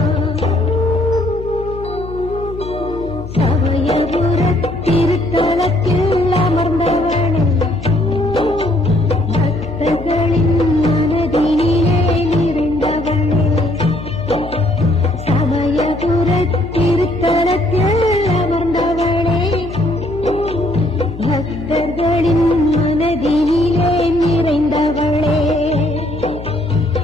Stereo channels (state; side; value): noise; left; hum, 12 dB below the sound